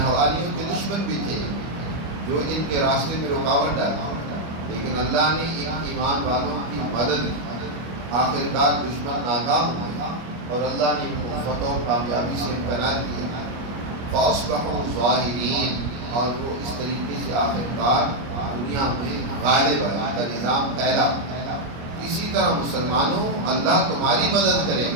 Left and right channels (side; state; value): left; late; 25 ms